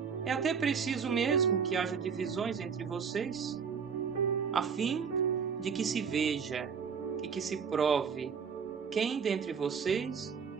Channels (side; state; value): left; quieter; 6.4 dB